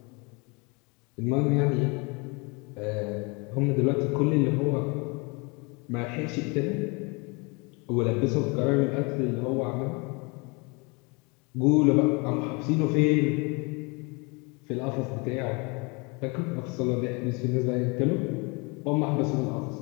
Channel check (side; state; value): right; quieter; 29.8 dB